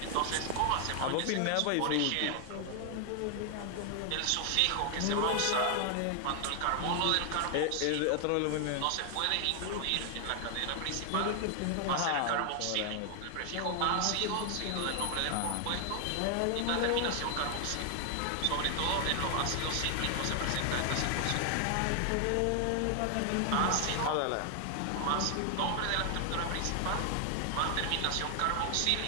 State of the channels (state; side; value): different; both; correlation 0.00